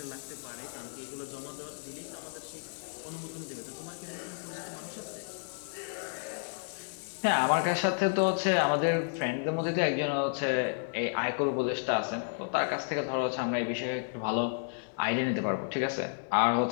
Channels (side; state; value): right; silent; digital silence